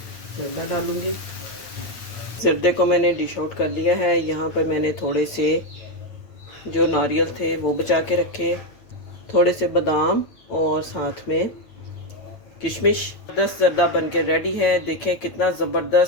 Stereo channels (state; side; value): late; right; 9.0 ms